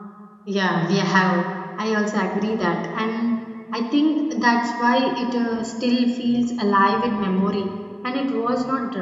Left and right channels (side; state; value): both; identical; correlation 1.00